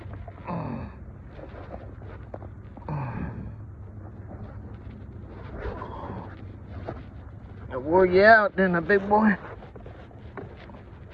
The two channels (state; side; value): identical; both; correlation 1.00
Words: I wore you out, didn't I, big boy?